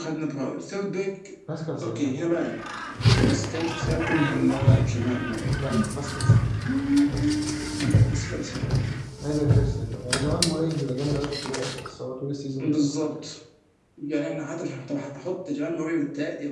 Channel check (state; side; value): identical; both; correlation 1.00